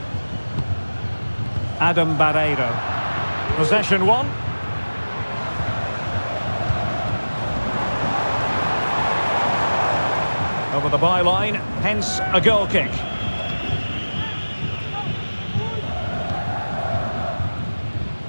Adam Barreiro. Possession one. Over the byline, hence a goal kick.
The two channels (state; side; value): inverted; both; correlation -1.00